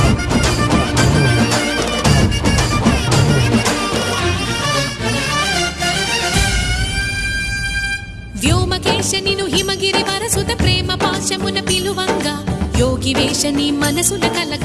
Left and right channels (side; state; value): both; identical; correlation 1.00